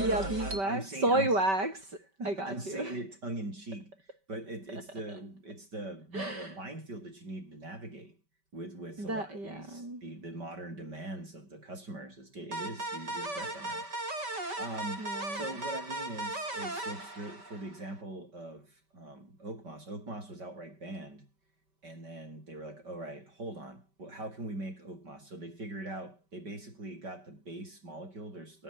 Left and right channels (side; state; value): left; late; 5.2 ms